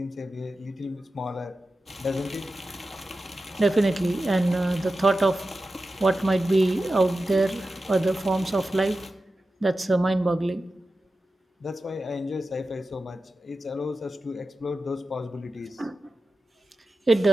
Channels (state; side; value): normal; both; correlation 0.93